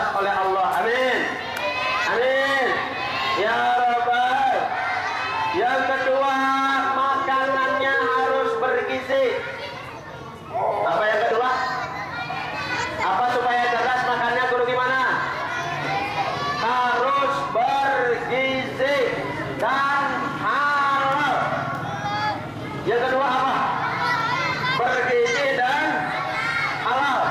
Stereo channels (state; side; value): identical; both; correlation 1.00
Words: oleh Allah. Amin. Amin. Ya Rabbal. Yang kedua, makanannya harus bergizi. Apa yang kedua? Apa supaya cerdas makannya guru gimana? Harus bergizi dan halal. Yang kedua apa? Bergizi dan halal.